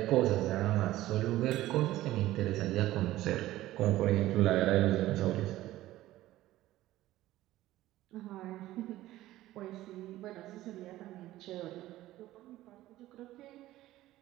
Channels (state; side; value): quieter; left; 15.6 dB